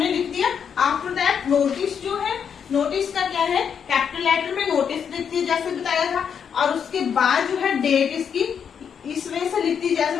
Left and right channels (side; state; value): right; quieter; 7.4 dB